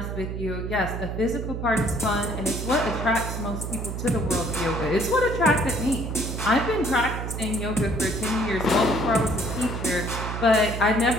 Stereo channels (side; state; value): right; noise; hum, 5 dB below the sound